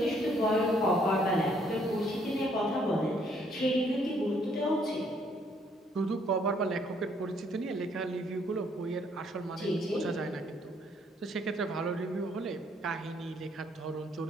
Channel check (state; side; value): normal; both; correlation 0.67